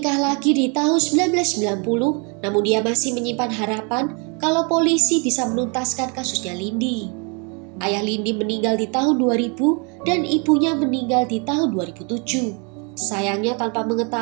lagi di tahun 1990, namun dia masih menyimpan harapan kalau polisi bisa menuntaskan kasusnya Lindy. Ayah Lindy meninggal di tahun 2000 dan ibunya meninggal di tahun 2007. Sayangnya tanpa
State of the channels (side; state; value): left; quieter; 34.2 dB